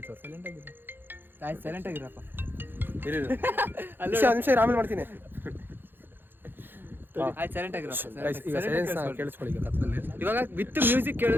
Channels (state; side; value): late; left; 0.098 ms